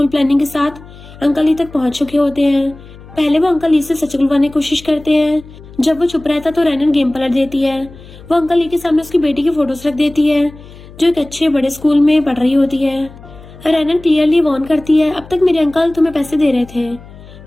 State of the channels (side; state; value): left; noise; hum, 19 dB below the sound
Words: प्लानिंग के साथ अंकल ली तक पहुंच चुके होते हैं। पहले वो अंकल ली से सच बुलवाने की कोशिश करते हैं। जब वो चुप रहता तो रैनन गेम पलट देती है। वो अंकल ली के सामने उसकी बेटी की फोटोज रख देती है जो एक अच्छे बड़े स्कूल में पढ़ रही होती है। रैनन क्लियरली वार्न करती है, अब तक मेरे अंकल तुम्हें पैसे दे रहे थे